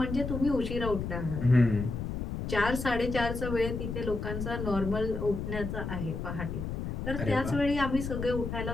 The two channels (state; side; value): noise; left; rumble, 4 dB below the sound